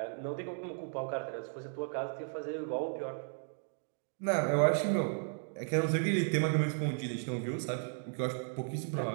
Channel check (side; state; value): left; silent; 54 dB below the other